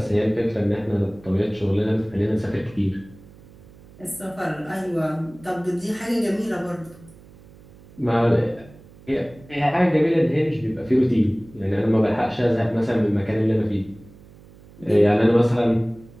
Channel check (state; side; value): noise; right; hum, 23 dB below the sound